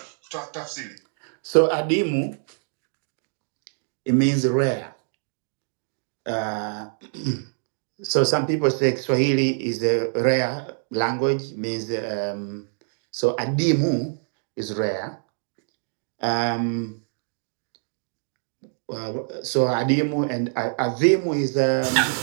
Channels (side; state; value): left; silent; 62 dB below the other